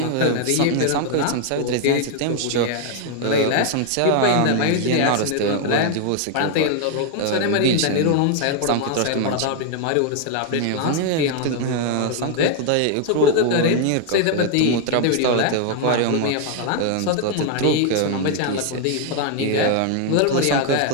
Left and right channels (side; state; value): both; different; correlation 0.00